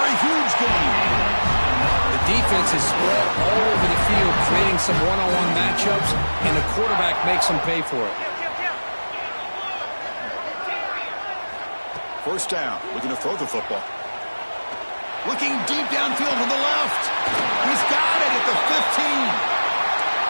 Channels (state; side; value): inverted; both; correlation -1.00